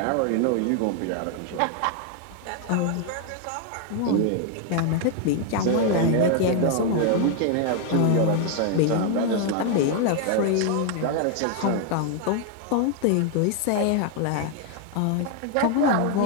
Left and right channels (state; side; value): different; both; correlation 0.00